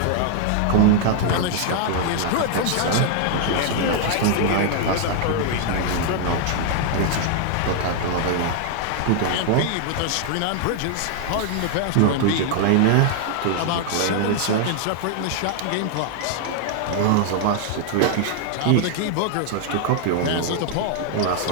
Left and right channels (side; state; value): both; different; correlation 0.00